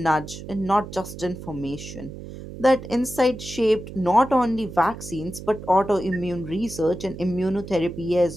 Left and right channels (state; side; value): noise; right; hum, 12 dB below the sound